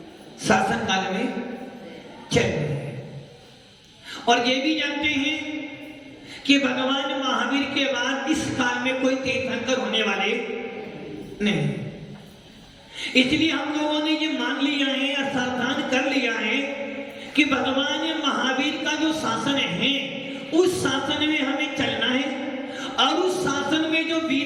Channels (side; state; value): both; identical; correlation 1.00